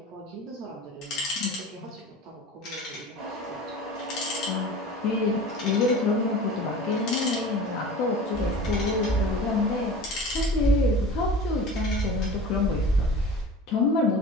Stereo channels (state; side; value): normal; both; correlation 0.38